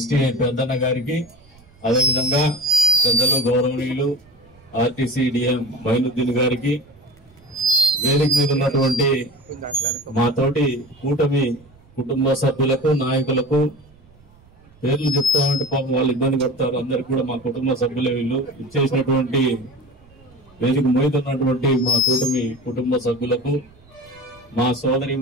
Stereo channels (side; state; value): right; noise; rumble, 28 dB below the sound